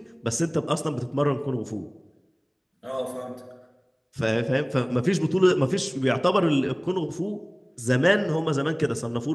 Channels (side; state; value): both; identical; correlation 1.00